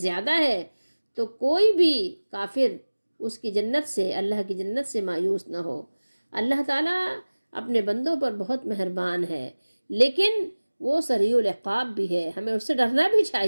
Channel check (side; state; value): both; inverted; correlation -1.00